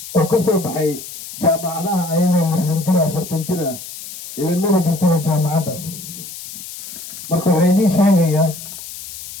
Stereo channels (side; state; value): left; noise; hiss, 12 dB below the sound